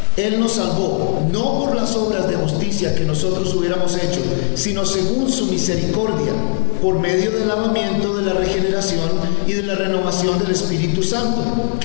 Él nos salvó, no por las obras de justicia que nosotros hubiéramos hecho, sino según su misericordia, por medio del lavamiento de la regeneración y de la renovación del Espíritu Santo,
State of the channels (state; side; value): silent; right; digital silence